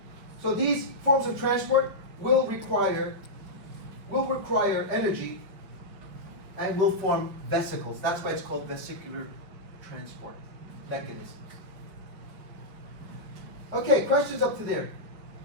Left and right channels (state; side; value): late; left; 5.3 ms